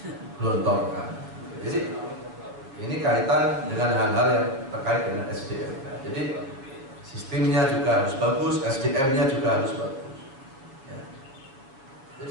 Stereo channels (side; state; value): left; late; 7.3 ms